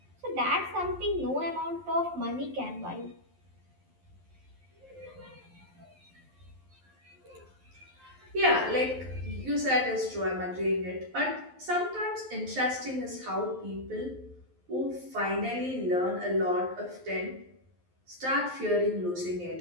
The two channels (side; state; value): left; late; 11 ms